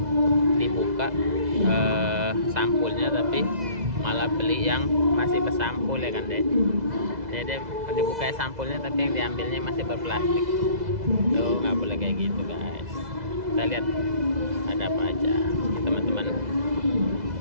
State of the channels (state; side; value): late; left; 2.0 ms